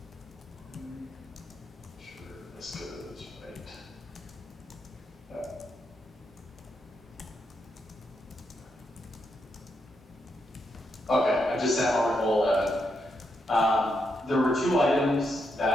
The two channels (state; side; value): normal; both; correlation 0.81